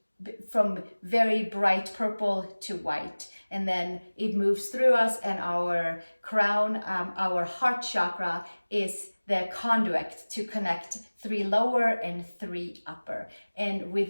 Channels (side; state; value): both; inverted; correlation -1.00